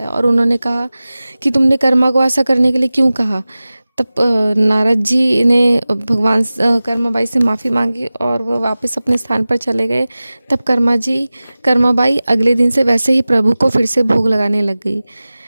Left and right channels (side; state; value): both; inverted; correlation -0.97